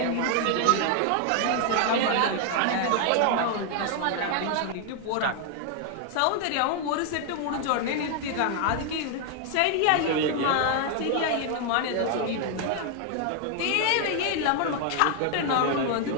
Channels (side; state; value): both; different; correlation 0.00